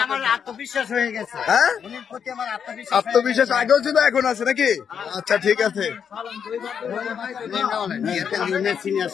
আমার আত্মবিশ্বাস হয়ে গেছে। হ্যাঁ, উনির প্রতি আমার আত্মবিশ্বাস আত্মবিশ্বাস আগেও ছিল এখন আছে নাকি? আচ্ছা ঠিক আছে। সিনিয়র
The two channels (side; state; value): right; quieter; 7.5 dB